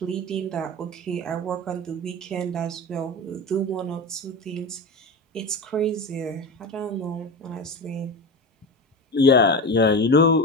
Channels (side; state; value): both; normal; correlation 0.25